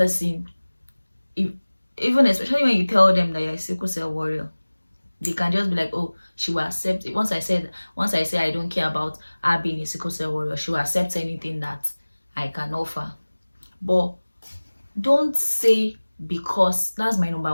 even especially when you tell them that you're a sickle cell warrior, they can just be like, oh, she will accept it. Once I say I don't care about her being a sickle cell warrior, she will accept anything that I can offer. But don't say, because that's my number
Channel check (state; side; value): inverted; both; correlation -1.00